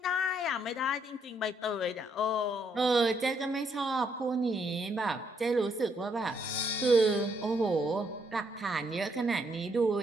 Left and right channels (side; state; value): both; normal; correlation 0.73